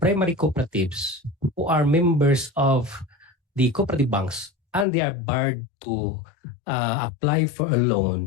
cooperatives who are members of the cooperative banks and they are barred to apply for a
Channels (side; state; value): right; drops out; at 4.9 s